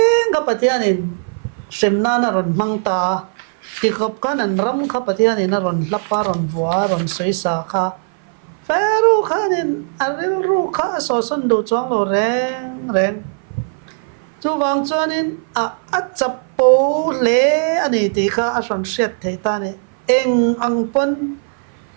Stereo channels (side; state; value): left; silent; 57 dB below the other